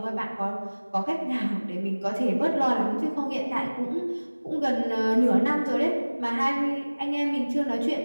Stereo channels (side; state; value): both; inverted; correlation -1.00